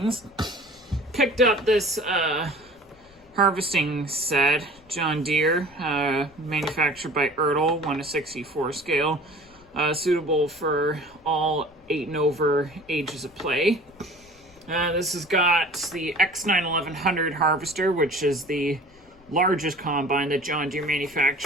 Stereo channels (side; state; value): left; noise; rumble, 27 dB below the sound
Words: Picked up this harvesting set, John Deere, manufactured by ERTL, 1:64 scale. Suitable for all 8 and over ages of play. This has got the X9 1100 harvester, which is the largest combine that John Deere